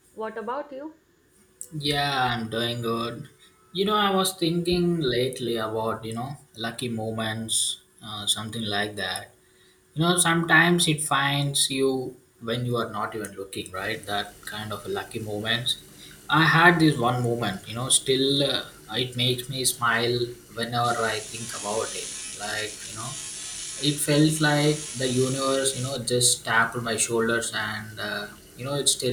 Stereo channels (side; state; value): both; identical; correlation 1.00